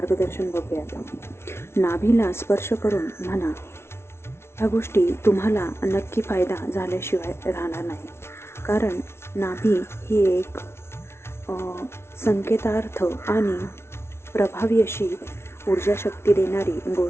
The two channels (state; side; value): late; right; 0.12 ms